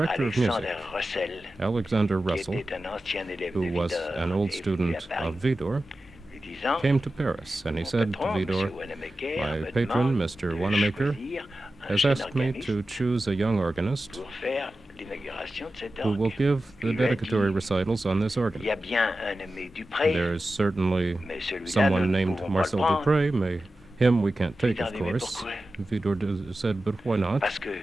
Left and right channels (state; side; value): normal; both; correlation 0.93